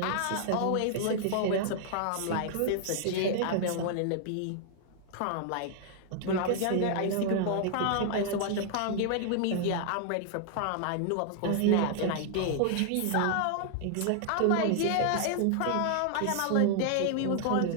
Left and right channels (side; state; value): both; different; correlation -0.01